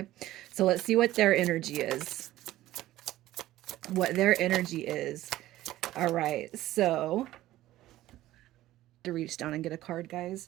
So let's see what their energy is. What their energy is. All right, so to reach down and get a card, guys.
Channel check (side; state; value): left; quieter; 15.2 dB